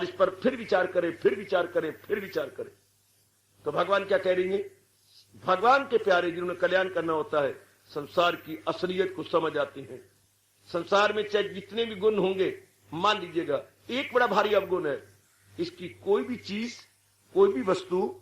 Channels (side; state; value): both; identical; correlation 1.00